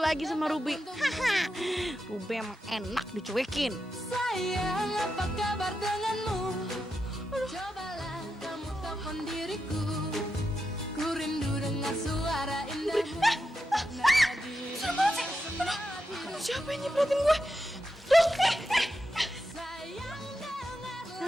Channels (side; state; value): both; normal; correlation 0.88